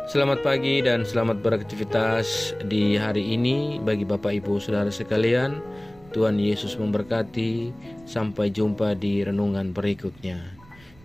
Selamat pagi dan selamat beraktivitas di hari ini bagi Bapak Ibu Saudara sekalian. Tuhan Yesus memberkati. Sampai jumpa di renungan berikutnya.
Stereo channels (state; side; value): noise; right; rumble, 25 dB below the sound